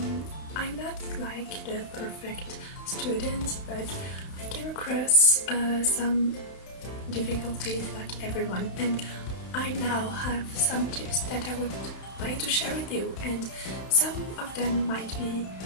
not like the perfect student, but I came across some difficulties like everyone, and I now have some tips that I would like to share with you, and some of them might be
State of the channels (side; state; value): right; late; 31 ms